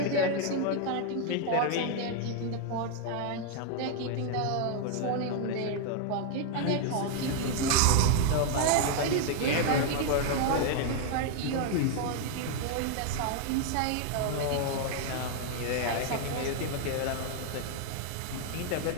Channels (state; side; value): different; both; correlation 0.00